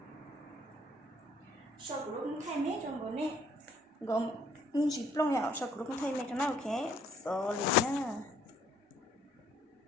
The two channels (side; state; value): both; normal; correlation 0.63